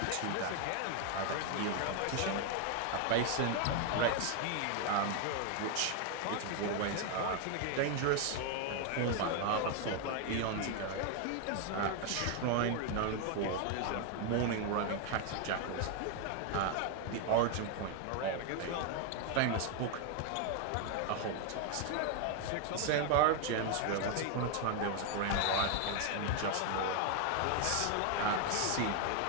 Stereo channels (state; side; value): different; both; correlation 0.01